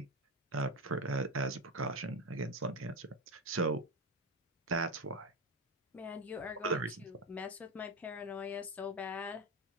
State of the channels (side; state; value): both; normal; correlation 0.15